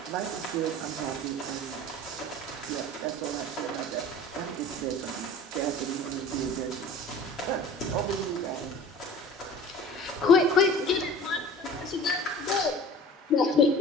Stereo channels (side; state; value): both; normal; correlation 0.41